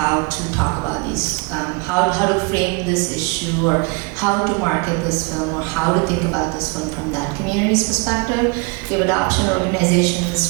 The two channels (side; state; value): left; quieter; 30.8 dB